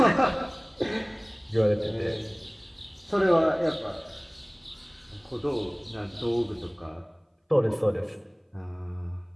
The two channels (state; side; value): identical; both; correlation 1.00